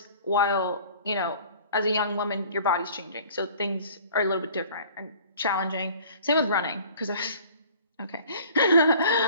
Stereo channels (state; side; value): inverted; both; correlation -0.49